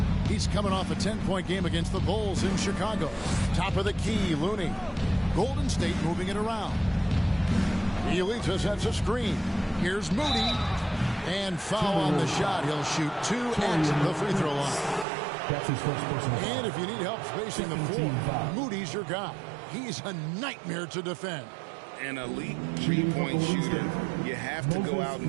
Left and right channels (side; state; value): left; drops out; at 15.1 s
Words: He's coming off a 10-point game against the Bulls in Chicago. Top of the key, Looney. Golden State moving it around. Bielitsa sets a screen. Here's Moody. And foul on the shot. He'll shoot 2 at the free throw line. That's his first personal foul. And if you need help spacing the floor, Moody's your guy. He's a nightmare to defend. An elite three-point shooter, you have to go out